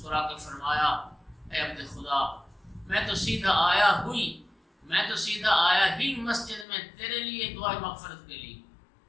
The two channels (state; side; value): drops out; right; at 6.7 s